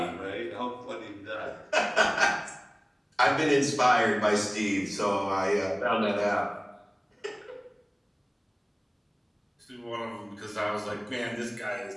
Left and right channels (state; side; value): identical; both; correlation 1.00